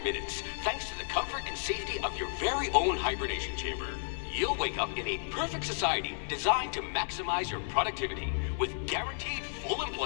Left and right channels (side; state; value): right; silent; digital silence